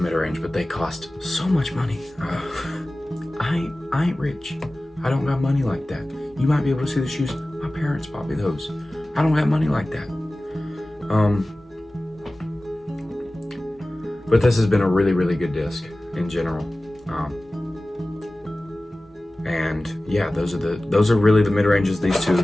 mid-range, but they cost so much money. I ain't rich. I don't got money like that. You might be able to see the shoes. My parents bought me those. I don't have money like that. But this has been a really, really good disc in general. And yeah, those are really the mid-ranges. These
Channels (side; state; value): both; normal; correlation 0.97